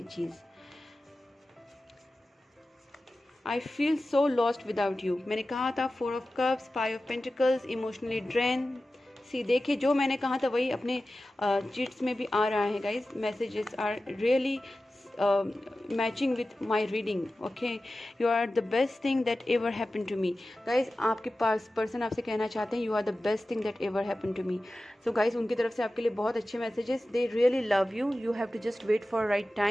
चीज़। I feel so lost without you, मैंने कहा था 4 of cups, 5 of pentacles, emotionally drain. See देखिए, जो मैंने कहा था वही अपने चिट्स में भी आ रहा है guys, messages are really matching with my reading, okay. You are the best thing that ever happen to me. Guys आपके पास पर्सन आपसे कहना चाहते हैं you are the best thing that ever happen to me. So guys उनकी तरफ से आपके लिए बहुत अच्छे messages, they really love you, you have to just wait for right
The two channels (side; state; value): both; normal; correlation 0.95